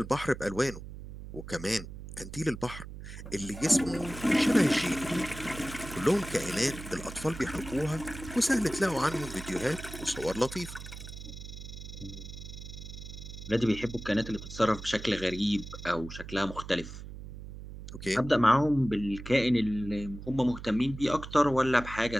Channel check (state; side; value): noise; right; hum, 12 dB below the sound